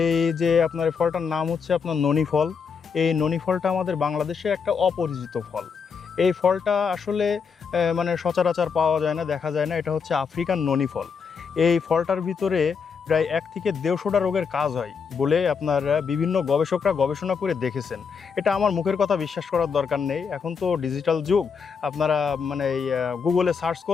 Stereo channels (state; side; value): quieter; right; 6.0 dB